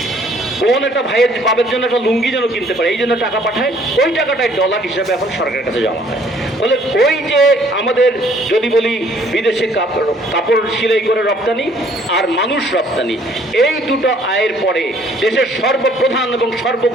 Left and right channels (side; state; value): both; normal; correlation 0.60